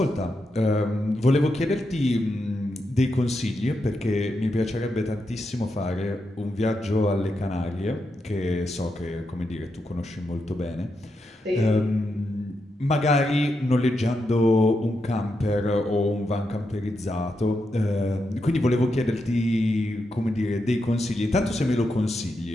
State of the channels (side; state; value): both; normal; correlation 0.85